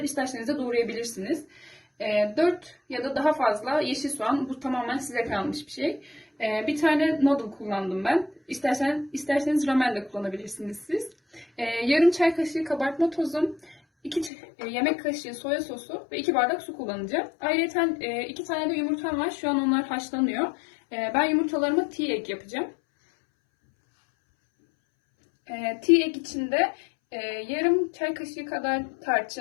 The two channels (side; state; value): right; drops out; at 14.3 s